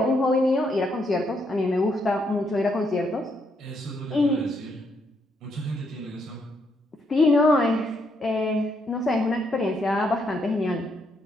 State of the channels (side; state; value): both; normal; correlation 0.75